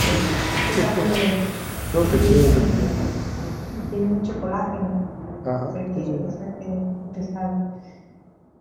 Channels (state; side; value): identical; both; correlation 1.00